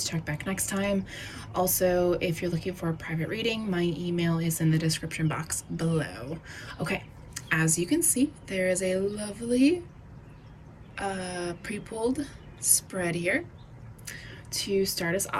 check back next time. Also, if you're looking for a private reading, my email is in the description box below. Okay, as you can see, there is a lovely pre-pulled spread here to start us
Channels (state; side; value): identical; both; correlation 1.00